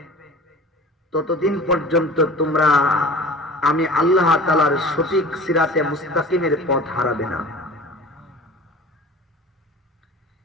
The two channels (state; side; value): normal; both; correlation 0.41